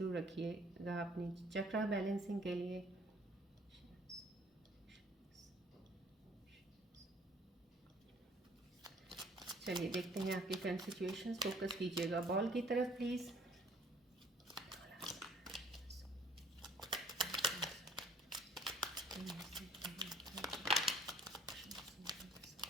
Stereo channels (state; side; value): normal; both; correlation 0.56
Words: रखिएगा अपनी चक्रा बैलेंसिंग के लिए। चलिए देखते हैं आपकी करंट सिचुएशंस। फोकस कीजिएगा बॉल की तरफ प्लीज़।